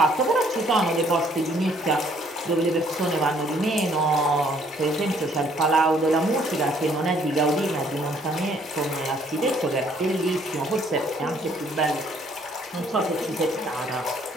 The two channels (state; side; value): normal; both; correlation 0.63